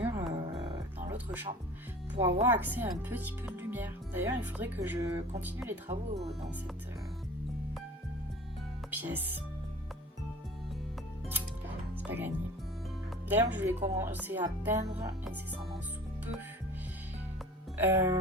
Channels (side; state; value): both; normal; correlation 0.42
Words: dans l'autre chambre pour avoir accès à un petit peu de lumière. D'ailleurs, il faudrait que je continue les travaux dans cette pièce. C'est pas gagné. D'ailleurs, je vais commencer à peindre incessamment sous peu.